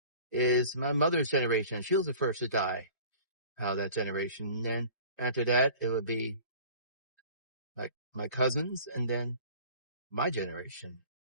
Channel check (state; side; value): inverted; both; correlation -0.44